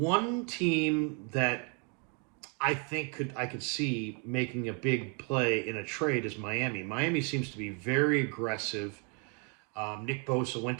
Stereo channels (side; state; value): left; quieter; 32.4 dB